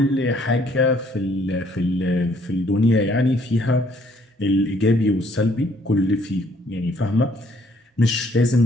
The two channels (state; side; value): normal; both; correlation 0.64